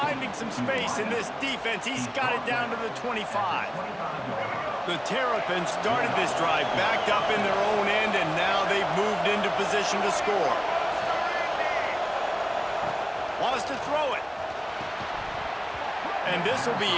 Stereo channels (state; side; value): identical; both; correlation 1.00